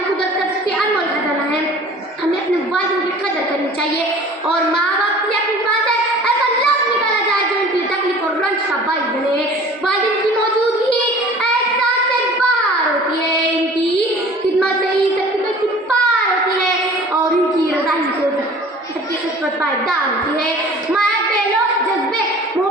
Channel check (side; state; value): both; normal; correlation 0.46